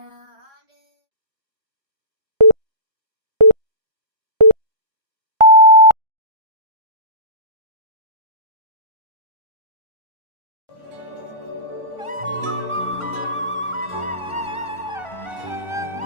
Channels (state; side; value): late; left; 1.4 ms